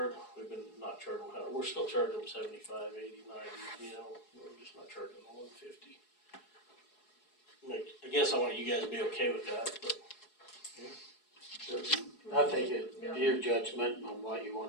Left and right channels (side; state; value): right; late; 4.7 ms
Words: we've been not charging them, we're still charging them 75, 80, 90, you know, we're just not charging them 150. I guess I want you guys to be okay with that, but. I think it's your judgment on what you